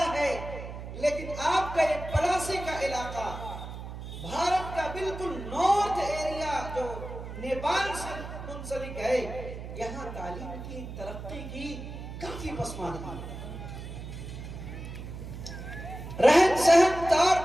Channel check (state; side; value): noise; right; hum, 9 dB below the sound